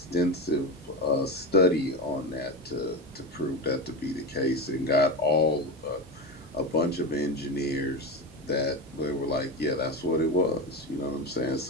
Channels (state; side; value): normal; both; correlation 0.21